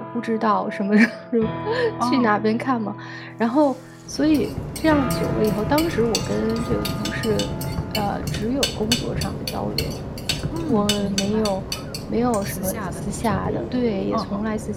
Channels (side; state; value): both; identical; correlation 1.00